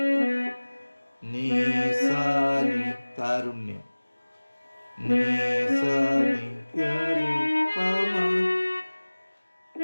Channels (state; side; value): inverted; both; correlation -1.00